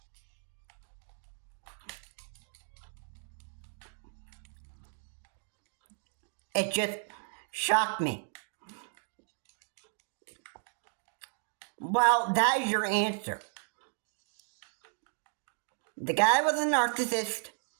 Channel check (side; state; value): left; silent; 55 dB below the other